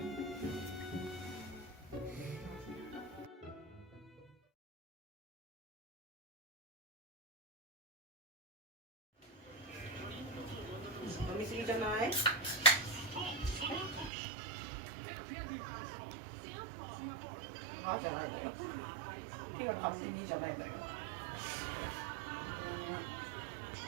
飲みすぎじゃない？あじゃないのよ。手が勝手にじゃないのよ。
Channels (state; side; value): drops out; left; at 14.1 s